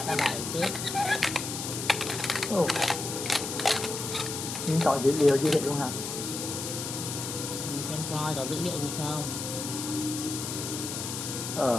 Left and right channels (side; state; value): left; noise; hiss, 5 dB below the sound